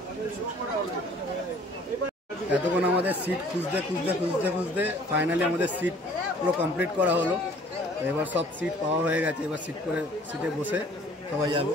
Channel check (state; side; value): normal; both; correlation 0.54